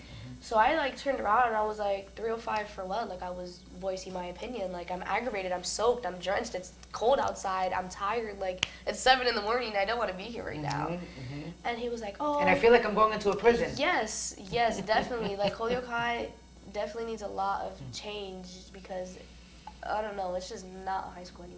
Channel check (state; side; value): identical; both; correlation 1.00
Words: So I, like, turned around, and I was like, 305 for what? Like, I was voicing my opinion. Like, I'm aggravated, I'm soaked, I'm drenched, it's cold outside, I'm tired. Like, it's 7 in the morning, I don't want to be here right now. And he was like, oh. And I feel like I'm going into a prison. Yes, definitely. Like, Holyoke High definitely needs a lot of change because, I don't know, it's just not a high school